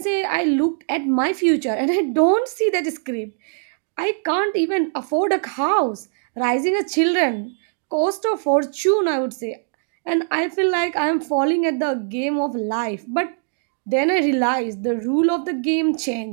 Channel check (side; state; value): left; silent; digital silence